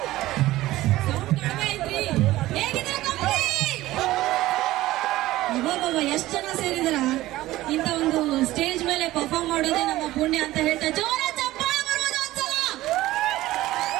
ಎಷ್ಟು ಜನ ಸೇರಿದ್ರ ಇಂತ ಒಂದು ಸ್ಟೇಜ್ ಮೇಲೆ ಪರ್ಫಾರ್ಮ್ ಮಾಡೋದೇ ನಮ್ಮ ಪುಣ್ಯ ಅಂತ ಹೇಳ್ತಾ ಜೋರ ಚಪ್ಪಾಳೆ ಬರ್ಬೋದು ಒಂದ್ಸಲ.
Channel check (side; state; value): left; quieter; 16.5 dB